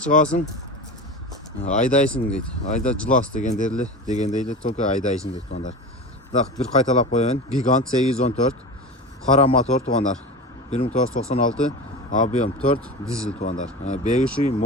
айдайсың дейді. Айда жылас дегендейді, только айдайсың дейді туғандар. Так, bir қайталап қояйын. Gigant 814, қара мотор туғандар. 1996, объем 4 dizel туғандар. Бегіші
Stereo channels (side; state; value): both; normal; correlation 0.29